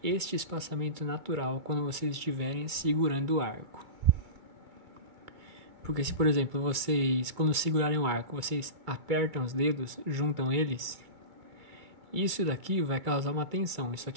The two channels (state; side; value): late; left; 2.3 ms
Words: este espaçamento natural quando vocês estiverem segurando o arco. Porque se, por exemplo, vocês, quando segurarem o arco, vocês apertam os dedos, juntam eles, isso daqui vai causar uma tensão, isso